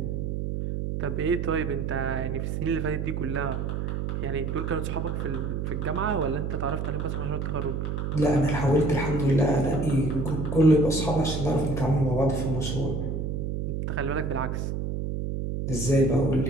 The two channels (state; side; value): noise; right; hum, 2 dB below the sound